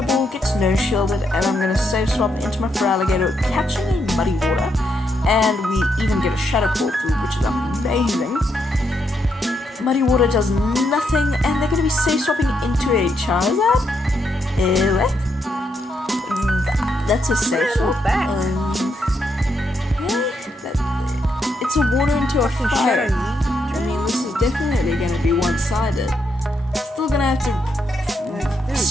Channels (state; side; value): normal; both; correlation 0.78